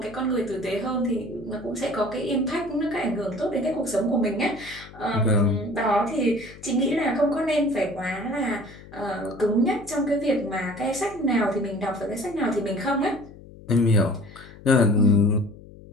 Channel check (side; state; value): left; noise; hum, 19 dB below the sound